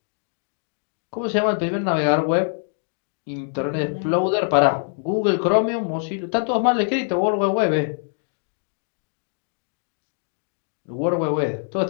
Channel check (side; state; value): right; silent; digital silence